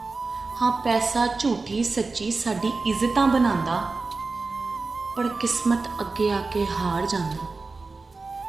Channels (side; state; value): left; quieter; 3.9 dB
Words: हाँ पैसा झूठी सच्ची साडी इज्जतां बनांदा, पर किस्मत अगे आके हार जांदा।